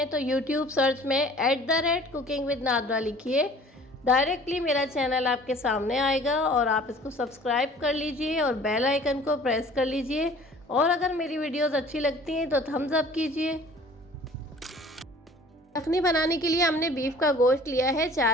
तो यूट्यूब सर्च में @कुकिंग विद नादरा लिखिए, डायरेक्टली मेरा चैनल आपके सामने आएगा और आप इसको सब्सक्राइब कर लीजिए और बेल आइकन को प्रेस कर लीजिए। और अगर मेरी वीडियोस अच्छी लगती हैं तो थम्स अप कीजिए। यखनी बनाने के लिए हमने बीफ का गोश्त लिया है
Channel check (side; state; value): both; normal; correlation 0.49